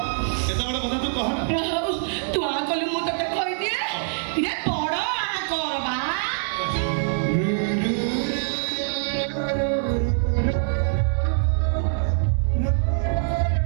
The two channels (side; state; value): left; silent; digital silence